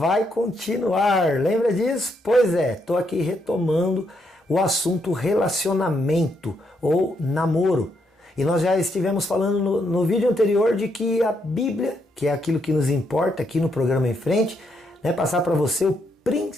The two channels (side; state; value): both; normal; correlation 0.77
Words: continuar. Lembra disso? Pois é, estou aqui retomando o assunto relacionamento ou namoro. E nós já estivemos falando no vídeo anterior de que a Bíblia, que é aquilo que nos importa aqui no programa em frente, né, passar para você o